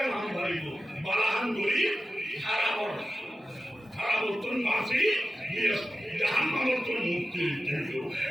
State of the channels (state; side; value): normal; both; correlation 0.93